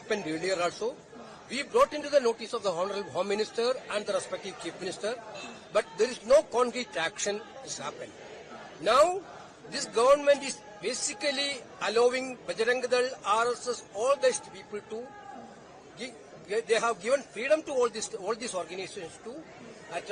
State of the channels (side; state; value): both; identical; correlation 1.00